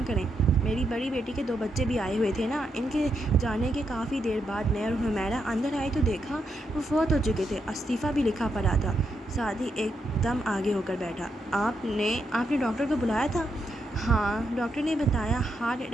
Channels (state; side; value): normal; both; correlation 0.81